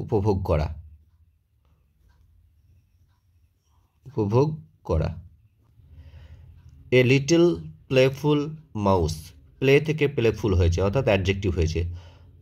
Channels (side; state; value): both; identical; correlation 1.00